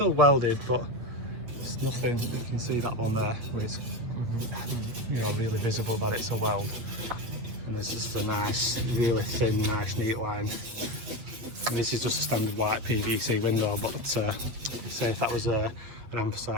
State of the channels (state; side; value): late; left; 8.8 ms